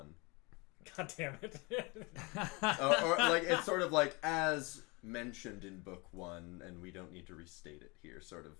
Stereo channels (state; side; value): quieter; right; 27.4 dB